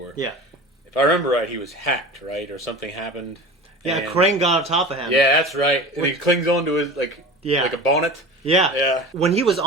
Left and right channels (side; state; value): both; normal; correlation 0.34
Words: Yeah. If I remember right, he was hacked, right? Or something happened. Yeah, a crane got on top of him. Yeah, that's right. And he clings onto his, like a bonnet. Yeah. Yeah. When he was